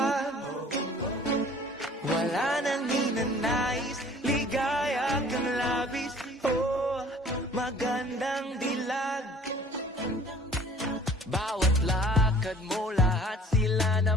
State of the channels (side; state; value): both; normal; correlation 0.51